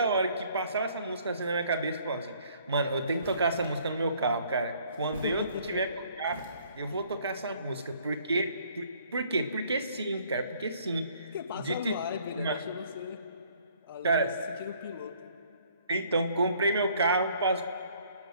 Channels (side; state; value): both; inverted; correlation -0.61